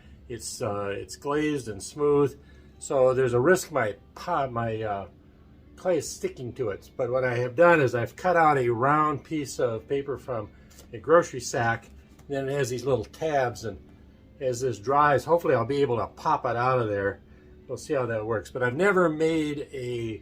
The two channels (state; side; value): identical; both; correlation 1.00